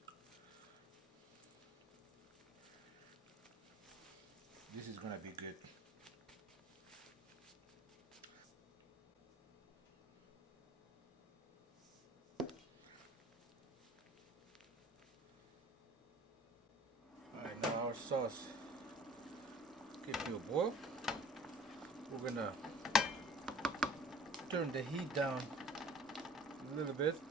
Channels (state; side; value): normal; both; correlation 0.49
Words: This is gonna be good. Alright, now our sauce get to a boil. We're gonna turn the heat down a little bit.